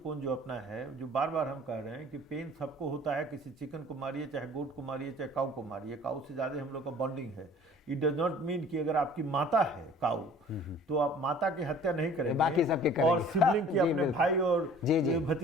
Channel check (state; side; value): normal; both; correlation 0.49